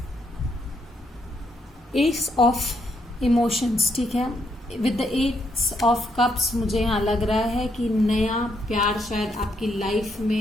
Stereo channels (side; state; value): both; normal; correlation 0.76